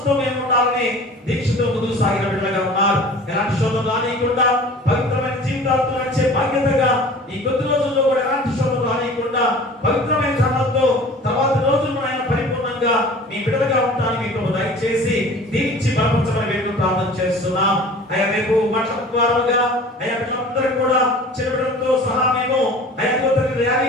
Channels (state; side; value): normal; both; correlation 0.43